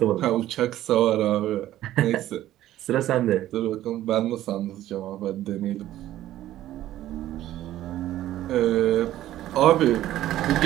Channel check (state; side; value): quieter; left; 13.6 dB